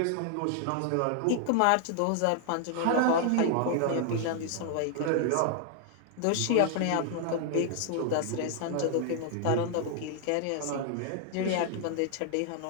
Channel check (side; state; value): both; different; correlation 0.00